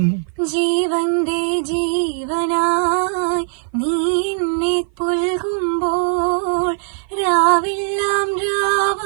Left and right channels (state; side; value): silent; left; 55 dB below the other